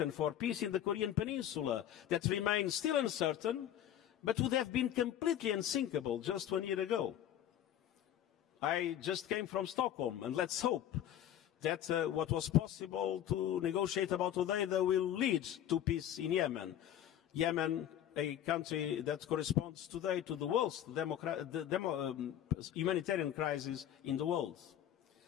for peace in the Korean Peninsula that remain still uncertain, but would have been completely unsinkable just 1 year ago. I just came from Stockholm, and let's hope that what was possible to negotiate about today will lead to peace in Yemen. Yemen, a country that corresponds today to the worst humanitarian crisis in the world.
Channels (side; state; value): right; quieter; 11.0 dB